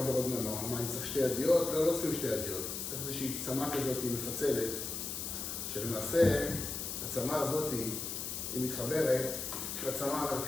עוד מנוע? מה, אני צריך שתי ידיות? לא צריכים שתי ידיות. צריך איזושהי צמה כזאת מפצלת, שלמעשה הצמה הזאת היא מתחברת לצמה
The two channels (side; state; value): left; noise; hiss, 4 dB below the sound